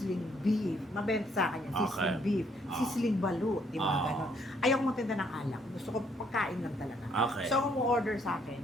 beef. Mabenta sa akin yan. Sizzling Okay. beef. Oh. Sizzling balut. Di ba? Oh. Ganon. Ayaw ko magtinda ng alak. Gusto ko pagkain lang talaga. Okay. So, kung order sa akin,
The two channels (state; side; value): normal; both; correlation 0.68